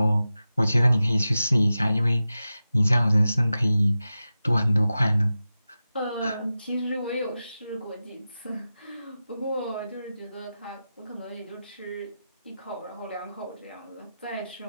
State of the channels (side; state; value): both; inverted; correlation -0.93